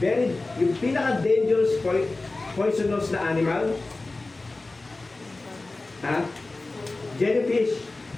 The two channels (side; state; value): right; quieter; 3.2 dB